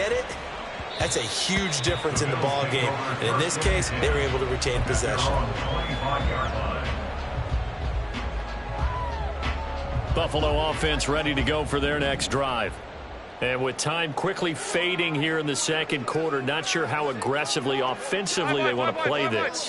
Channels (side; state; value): both; identical; correlation 1.00